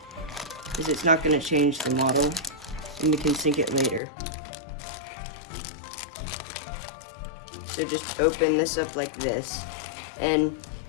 because it's not gonna change the model and we can sink it later. So just open this up like this and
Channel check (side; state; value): right; drops out; at 4.0 s